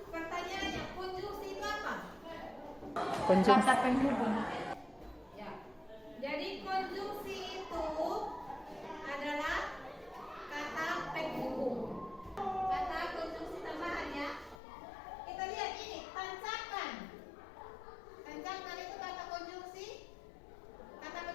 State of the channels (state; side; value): drops out; right; at 14.6 s